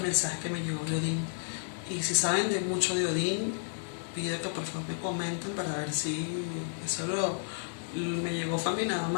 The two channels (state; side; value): silent; right; digital silence